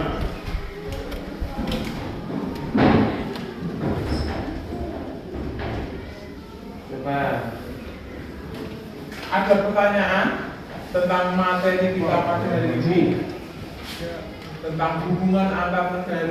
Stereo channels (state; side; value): identical; both; correlation 1.00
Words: Coba ada pertanyaan tentang materi kita pada hari ini, tentang hubungan antar